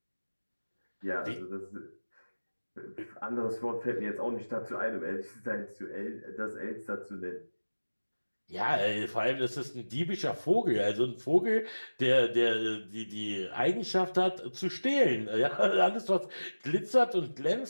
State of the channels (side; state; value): both; inverted; correlation -1.00